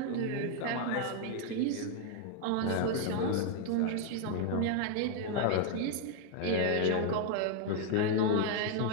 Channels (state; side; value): different; both; correlation 0.00